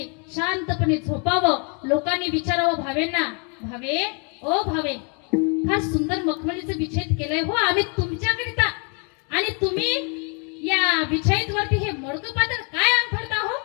शांतपणे झोपावं. लोकांनी विचारावं भावेंना, भावे ओ भावे, फार सुंदर मखमलीचं बिछाईत केलंय हो आम्ही तुमच्याकरिता, आणि तुम्ही या बिछाईत वरती हे मोडकं पातळ काय अंथरता हो.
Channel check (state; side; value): quieter; right; 36.3 dB